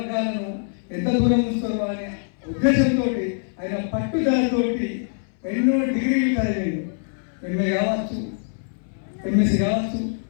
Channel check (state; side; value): silent; right; 62 dB below the other